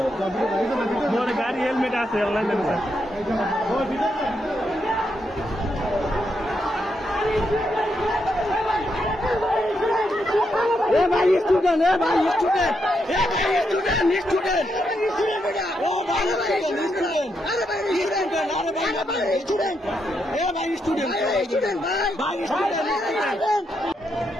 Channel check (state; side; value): normal; both; correlation 0.81